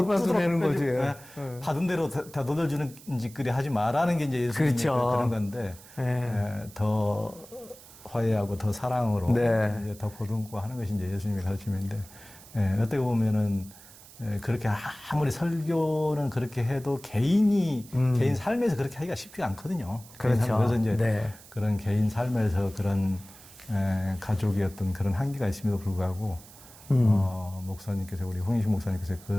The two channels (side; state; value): right; noise; hiss, 20 dB below the sound